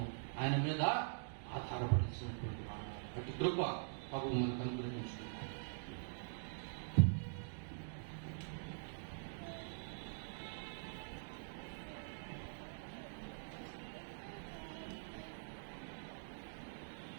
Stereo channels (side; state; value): left; silent; digital silence